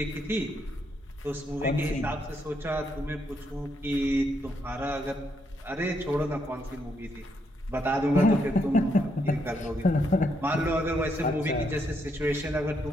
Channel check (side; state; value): both; normal; correlation 0.77